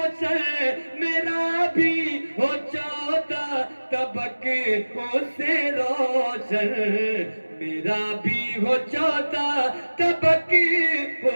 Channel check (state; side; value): inverted; both; correlation -1.00